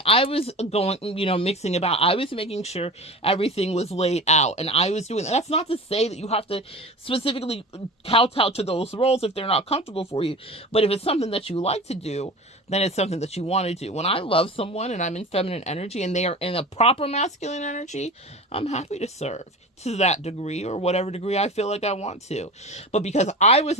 I was going, mixing about. I was making sure everything was laid out. And I was doing that. That's not to say that you have to specifically kowtow to those roles if they're not comfortable for you. But if it's something that you like to do, then it's something that you want to do. When I love someone and I'm in feminine energy and they are in a proper masculine energy, I'm happy to serve to that degree or whatever degree I feel like I want to. But because I was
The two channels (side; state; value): both; normal; correlation 0.34